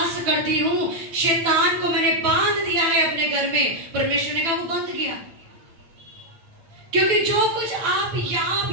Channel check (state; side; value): late; left; 9.1 ms